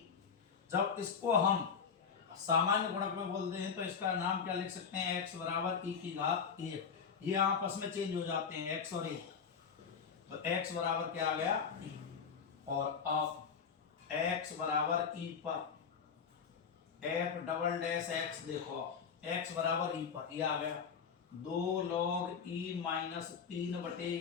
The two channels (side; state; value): right; quieter; 6.4 dB